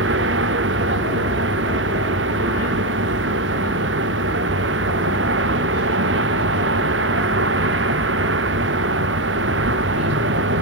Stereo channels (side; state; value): both; normal; correlation 0.08